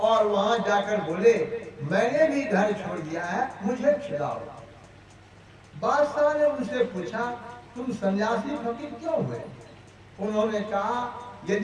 वहां जाकर बोले मैंने भी घर छोड़ दिया है, मुझे छुड़ाओ। बादशाह ने उनसे पूछा तुम सन्यासी फकीर क्यों हुए। उन्होंने कहा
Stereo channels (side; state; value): both; identical; correlation 1.00